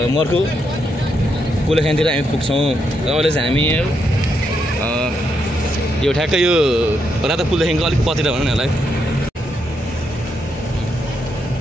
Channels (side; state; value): both; normal; correlation 0.79